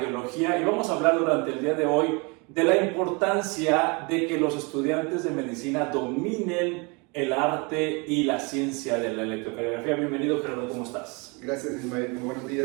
y vamos a hablar durante el día de hoy de la importancia de que los estudiantes de medicina dominen el arte y la ciencia de la electrocardiografía. Bienvenido, Gerardo, ¿cómo estás? Gracias, Ismael. Muy buenos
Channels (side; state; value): left; quieter; 30.3 dB